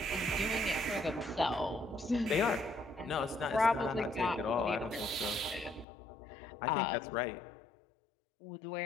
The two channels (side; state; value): right; drops out; at 5.9 s